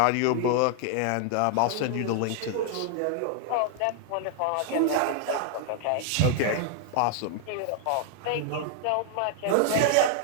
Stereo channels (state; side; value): different; both; correlation 0.00